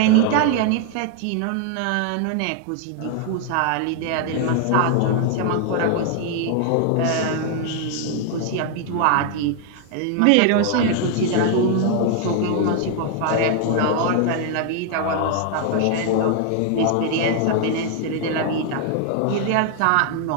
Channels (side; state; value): both; different; correlation 0.00